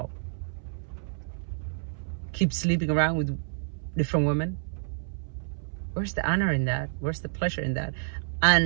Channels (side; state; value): left; silent; 59 dB below the other